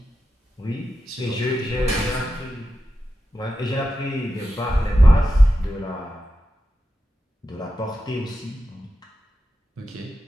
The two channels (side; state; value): both; normal; correlation 0.91